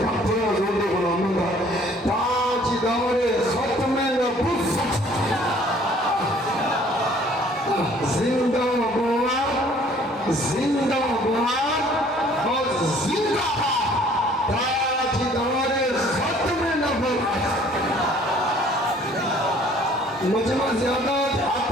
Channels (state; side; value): normal; both; correlation 0.56